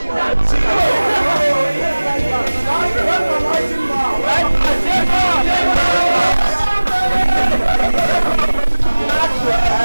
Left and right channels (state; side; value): inverted; both; correlation -1.00